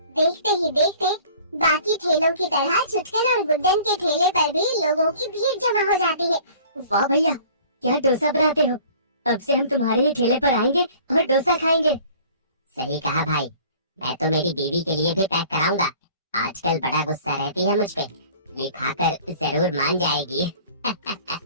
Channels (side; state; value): both; inverted; correlation -0.49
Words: देखते ही देखते बाकी ठेलों की तरह छुटकन और गुड्डन के ठेले पर भी लोगों की भीड़ जमा हो जाती है। वाह भैया, क्या डोसा बनाते हो। अब से हम तुम्हारे ही ठेले पर आएंगे और डोसा खाएंगे। सही कहा भाई, मैं तो मेरी बीवी के लिए भी पैक कराऊंगा। आजकल बड़ा गुस्सा रहती है मुझ पे, ये खाकर जरूर मान जाएगी।